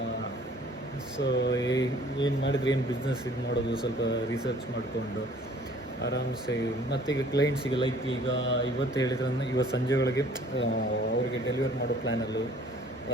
ಸೊ ಏನು ಮಾಡಿದ್ರೆ ಏನು ಬಿಸ್ನೆಸ್ ಇದು ಮಾಡೋದು, ಸ್ವಲ್ಪ ರಿಸರ್ಚ್ ಮಾಡಿಕೊಂಡು ಆರಾಮ್ಸೆ. ಮತ್ತೀಗ ಕ್ಲೈಂಟ್ಸಿಗೆ ಲೈಕ್ ಈಗ ಇವತ್ತು ಹೇಳಿದ್ರೆ ಇವತ್ತು ಸಂಜೆ ಒಳಗೆ ಅವರಿಗೆ ಡೆಲಿವರ್ ಮಾಡೋ ಪ್ಲ್ಯಾನಲ್ಲೂ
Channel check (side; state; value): both; normal; correlation 0.54